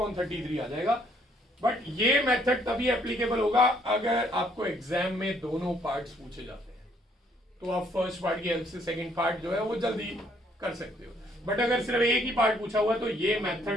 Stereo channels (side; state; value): both; normal; correlation 0.66